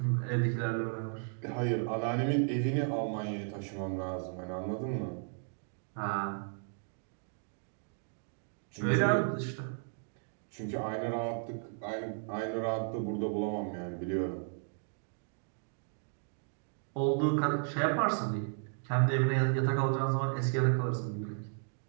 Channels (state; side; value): silent; left; 55 dB below the other